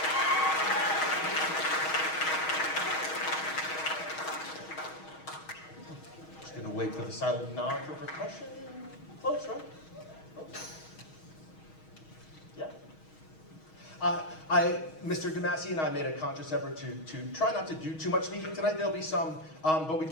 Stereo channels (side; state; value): right; late; 6.3 ms